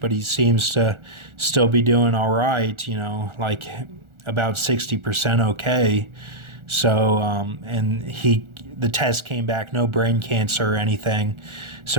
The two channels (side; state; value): left; late; 1.4 ms